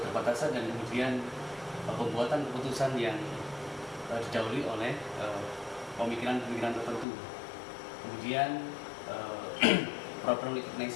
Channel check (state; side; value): drops out; right; at 7.1 s